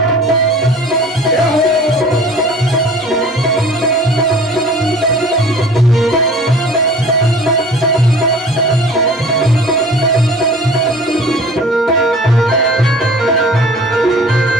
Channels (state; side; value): normal; both; correlation 0.46